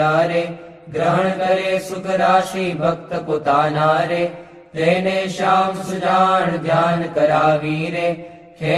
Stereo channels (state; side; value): identical; both; correlation 1.00